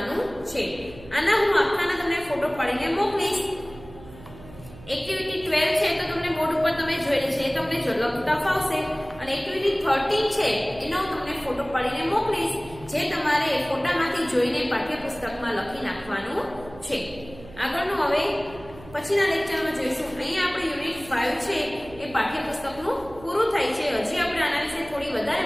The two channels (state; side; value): noise; right; hum, 18 dB below the sound